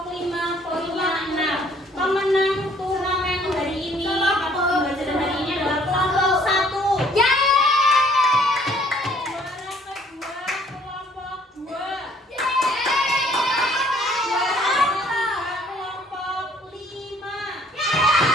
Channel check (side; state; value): both; normal; correlation 0.60